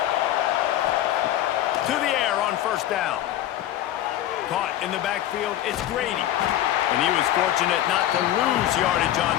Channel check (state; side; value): quieter; right; 12.7 dB